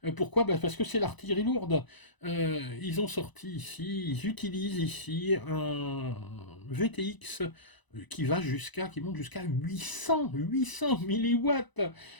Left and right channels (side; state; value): right; late; 1.0 ms